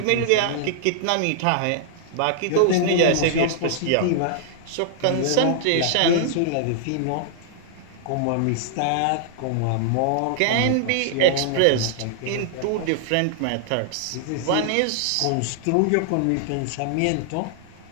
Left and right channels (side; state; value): both; different; correlation -0.01